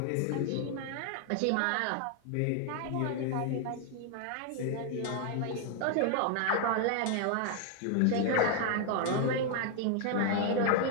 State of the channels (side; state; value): both; different; correlation 0.00